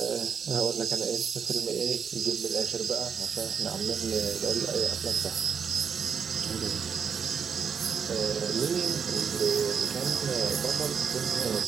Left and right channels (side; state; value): left; quieter; 6.6 dB